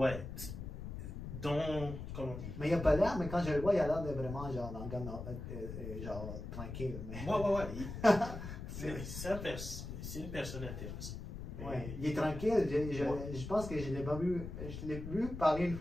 Comment dire? Mais il n'a pas l'air, mais quand je le vois, il a l'air de vraiment genre, genre tranquille. Mais... C'est une personne intéressante. Il est tranquille. Je pense que je l'ai vu parler une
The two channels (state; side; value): noise; left; rumble, 8 dB below the sound